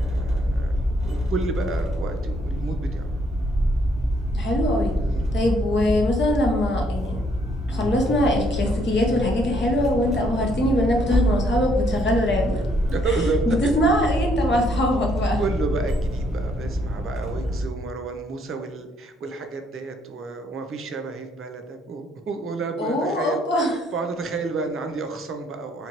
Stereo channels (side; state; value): both; normal; correlation 0.69